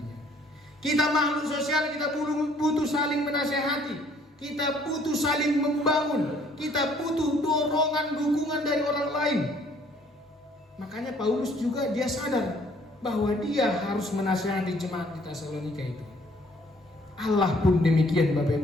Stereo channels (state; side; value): normal; both; correlation 0.60